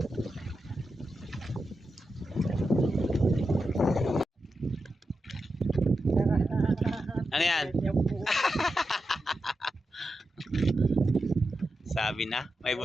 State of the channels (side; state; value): both; normal; correlation 0.89